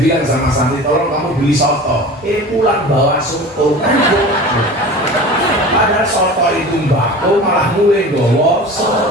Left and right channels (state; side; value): normal; both; correlation 0.36